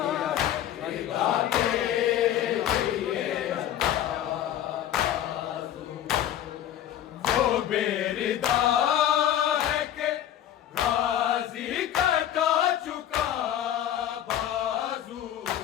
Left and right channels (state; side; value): quieter; right; 11.3 dB